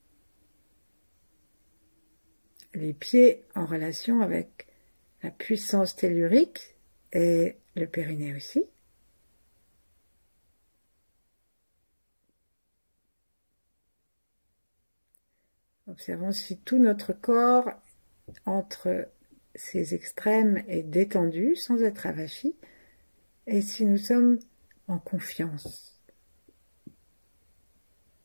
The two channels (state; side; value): inverted; both; correlation -1.00